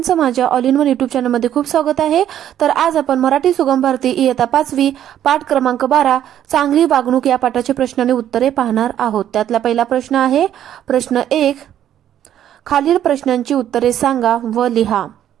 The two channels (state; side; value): quieter; left; 10.9 dB